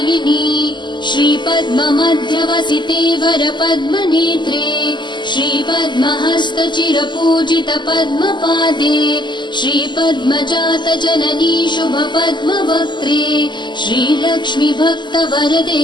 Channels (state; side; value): late; right; 0.22 ms